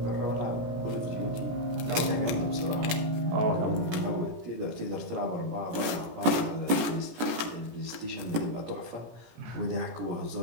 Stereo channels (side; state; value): left; late; 17 ms